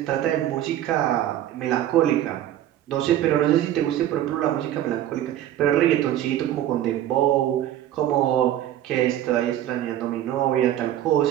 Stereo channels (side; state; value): left; quieter; 12.2 dB